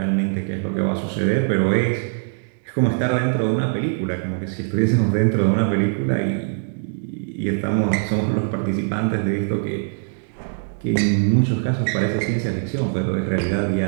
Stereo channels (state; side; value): silent; left; digital silence